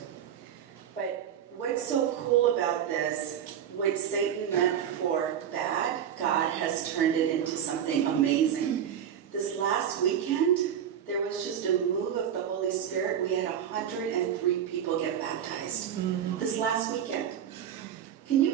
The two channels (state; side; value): quieter; left; 9.2 dB